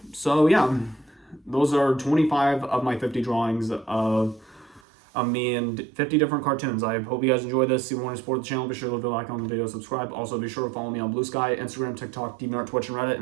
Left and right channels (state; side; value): drops out; left; at 4.8 s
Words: So yeah, those are 25 of my 50 drawings of me and 50 different cartoons. I hope you guys enjoyed this. If you want to support the channel, be sure to leave a like on the video, subscribe. Also, be sure to follow me on Blue Sky, Instagram, TikTok, DeviantArt, Twitch, and Reddit.